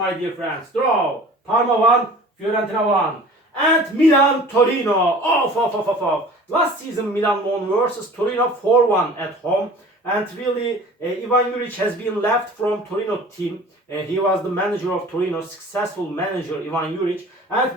dear friends. Draw. Parma 1, Fiorentina 1. And Milan Torino. Off. Last season Milan won versus Torino 4-1 at home. And really, Ivan Juric has been left from Torino team. He was the manager of Torino, successful manager Ivan Juric.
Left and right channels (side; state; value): both; normal; correlation 0.44